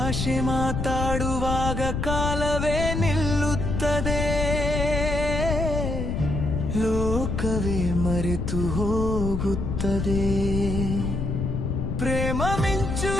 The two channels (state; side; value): noise; left; rumble, 2 dB below the sound